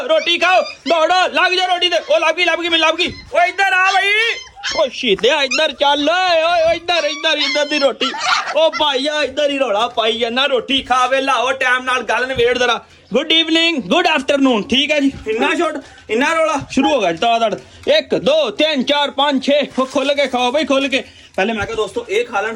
रोटी खाओ दौड़ो लग जाओ रोटी ते लग गई मैं लग गई ओए इधर आ भाई ओ शीदे इधर चल ओए इधर दी रोटी ओ भाईया इधर ही रोला पाई जाना रोटी खा वे लाओ टाइम नाल गल नवेड़ जरा गुड इवनिंग गुड आफ्टरनून ठीक है जी इन्ना छोड़ इन्ना रोला शुरू हो गया दड़ 1 2 3 4 5 6 खोल के खाओ भाई खोल के पहले मैं कहा दोस्तों ये खा लें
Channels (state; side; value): identical; both; correlation 1.00